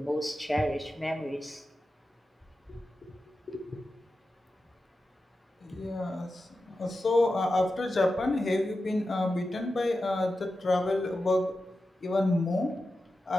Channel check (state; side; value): normal; both; correlation 0.92